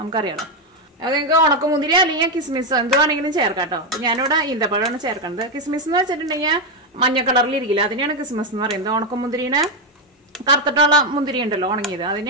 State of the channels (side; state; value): both; normal; correlation 0.06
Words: നമുക്കറിയാലോ. അത് നിങ്ങൾക്ക് ഉണക്കമുന്തിരി അല്ലെങ്കിൽ കിസ്മിസ് എന്തുവാണെങ്കിലും ചേർക്കാം കേട്ടോ. ഞാനിവിടെ ഈന്തപ്പഴമാണ് ചേർക്കുന്നത്. കിസ്മിസ് എന്ന് വെച്ചിട്ടുണ്ടെങ്കിൽ മഞ്ഞ കളറിൽ ഇരിക്കില്ല, അതിനെയാണ് കിസ്മിസ് എന്ന് പറയുന്നത്. ഉണക്കമുന്തിരിനെ കറുത്തിട്ടുള്ള മുന്തിരി ഉണ്ടല്ലോ ഉണങ്ങിയത്,